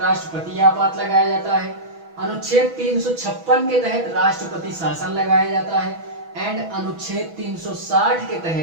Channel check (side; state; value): left; late; 6.1 ms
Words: राष्ट्रपति आपात लगाया जाता है, अनुच्छेद 356 के तहत राष्ट्रपति शासन लगाया जाता है एंड अनुच्छेद 360 के